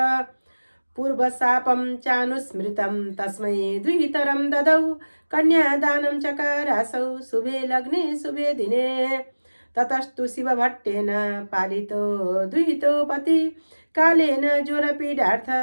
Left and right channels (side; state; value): both; inverted; correlation -1.00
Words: पूर्वशापं चानुस्मृतं तस्मै द्वितरं ददौ कन्यादानं चकारासौ शुभे लग्ने शुभे दिने ततस्तु शिवभट्टेन पालितो दुहितो पति कालेन ज्वरपीडार्थ